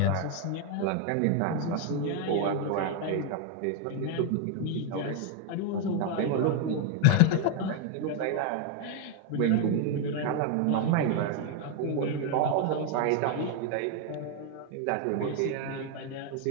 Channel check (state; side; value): different; both; correlation 0.01